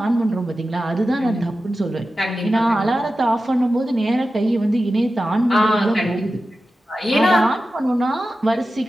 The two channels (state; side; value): normal; both; correlation 0.93